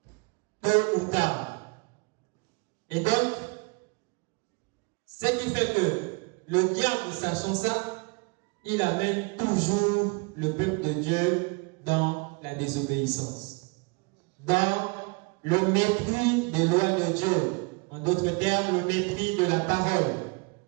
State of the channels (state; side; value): quieter; left; 30.9 dB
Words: Tôt ou tard. Et donc, ce qui fait que le diable, sachant ça, il amène toujours le peuple de Dieu dans la désobéissance, dans le mépris des lois de Dieu, en d'autres termes, le mépris de la parole.